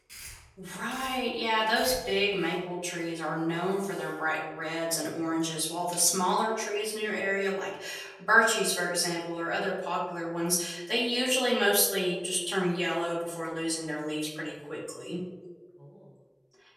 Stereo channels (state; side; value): identical; both; correlation 1.00